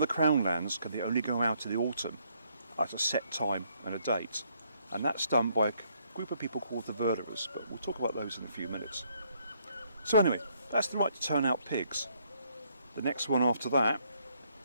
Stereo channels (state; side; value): inverted; both; correlation -0.69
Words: crown lands can they only go out in the autumn at a set time and a date, and that's done by a group of people called the Verderers, but we'll talk about those in a few minutes. So anyway, that's the right to turn out pigs. The next one after that